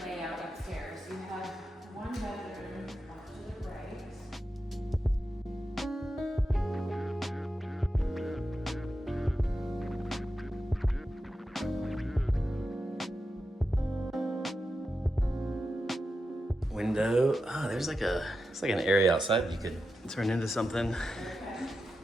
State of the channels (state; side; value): normal; both; correlation 0.89